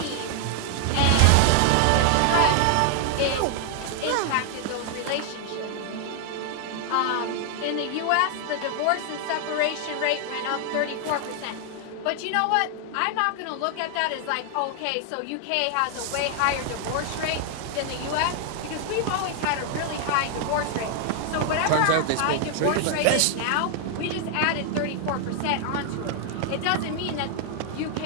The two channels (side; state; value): both; different; correlation 0.00